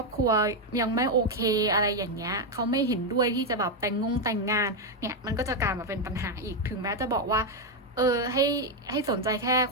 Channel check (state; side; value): normal; both; correlation 0.04